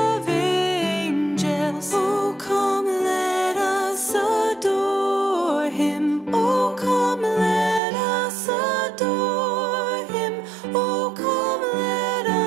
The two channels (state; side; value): drops out; left; at 7.8 s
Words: angels. O come, let us adore him. O come, let us adore him. O come, let